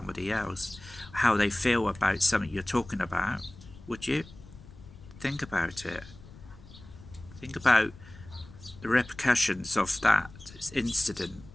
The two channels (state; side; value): noise; left; rumble, 19 dB below the sound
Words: else how they feel about something you're talking about, would you? Think about it. Think about the repercussions of that incident,